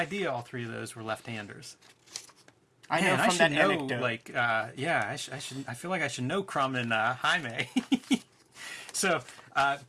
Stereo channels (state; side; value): identical; both; correlation 1.00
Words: all 3 of those were left-handers. I know Man, I from should that know, anecdote. like, I should. I feel like I should know Crumb and Jaime. So,